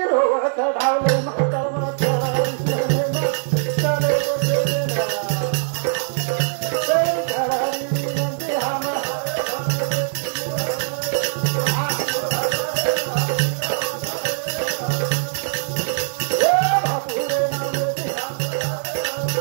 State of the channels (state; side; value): silent; left; digital silence